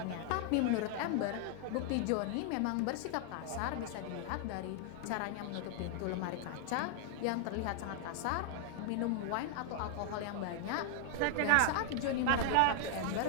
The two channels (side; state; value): both; different; correlation 0.00